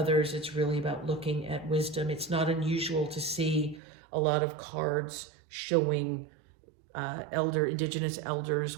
it's really about looking at wisdom. It's not unusual to see a lot of cards showing indigenous elders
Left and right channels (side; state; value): left; drops out; at 3.8 s